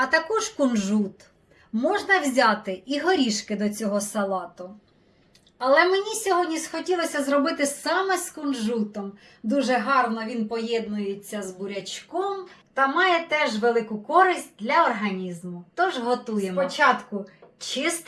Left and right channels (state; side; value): identical; both; correlation 1.00